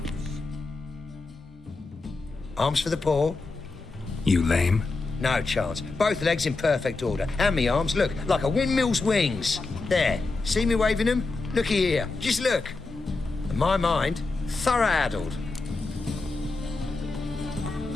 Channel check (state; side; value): quieter; right; 3.6 dB